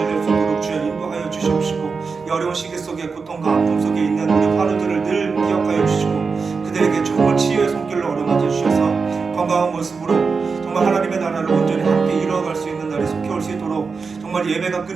수 있도록 주여 인도하여 주시옵시고, 이 어려운 시기 속에 고통과 아픔 속에 있는 우리 환우들을 늘 기억하여 주시고, 그들에게 정말 치유의 손길로 어루만져 주셔서 건강한 모습으로 정말 하나님의 나라를 온전히 함께 이루어갈 수 있는 날이 속히 올 수 있도록, 정말 예배가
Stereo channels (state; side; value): quieter; left; 4.9 dB